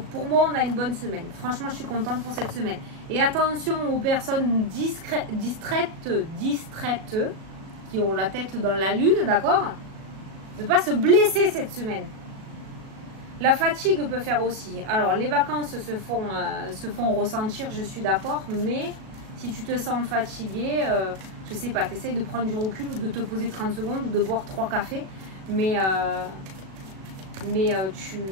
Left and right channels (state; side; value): late; left; 37 ms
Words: pour moi, on a une bonne semaine. Franchement, je suis contente pour cette semaine. Et attention aux personnes distraites, qui ont la tête dans la lune, d'accord? Ne pas se blesser cette semaine. La fatigue peut faire aussi. Alors, les vacances se font ressentir, je suis d'accord. Mais si tu te sens fatigué, je sais pas, tu essayes de prendre du recul ou de te poser 30 secondes ou de boire 3 cafés. Mais